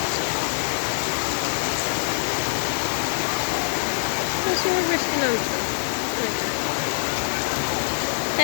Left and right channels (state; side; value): silent; right; digital silence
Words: প্রচুর বৃষ্টি নামছে,